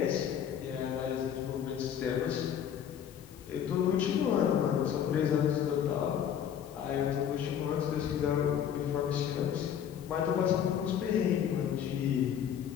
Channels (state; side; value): quieter; right; 9.0 dB